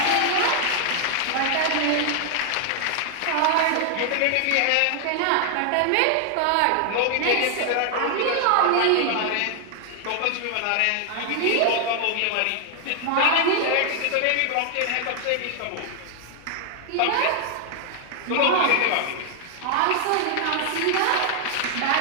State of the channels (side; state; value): both; different; correlation 0.00